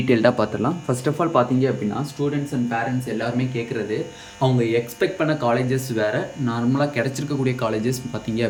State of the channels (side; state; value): both; identical; correlation 1.00